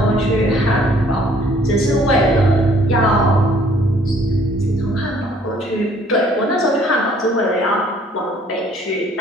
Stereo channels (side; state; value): both; normal; correlation 0.60